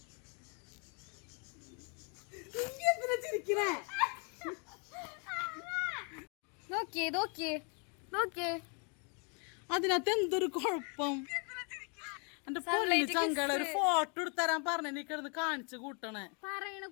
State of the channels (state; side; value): quieter; right; 36.9 dB